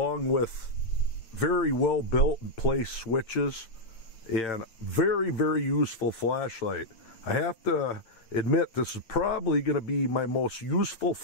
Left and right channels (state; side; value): late; right; 8.9 ms